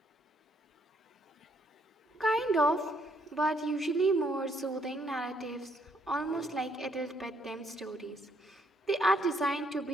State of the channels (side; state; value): both; normal; correlation 0.70